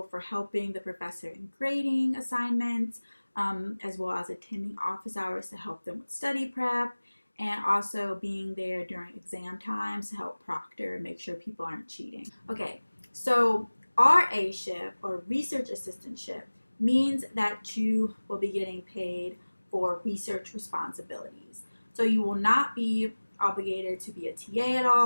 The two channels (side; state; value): both; inverted; correlation -1.00